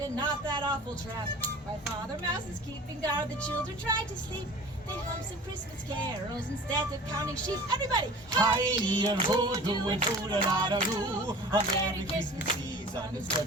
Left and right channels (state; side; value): normal; both; correlation 0.42